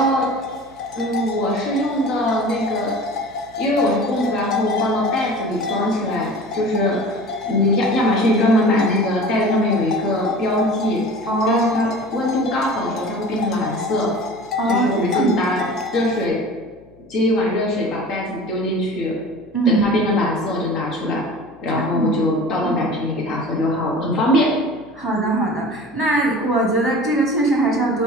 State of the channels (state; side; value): noise; left; hum, 26 dB below the sound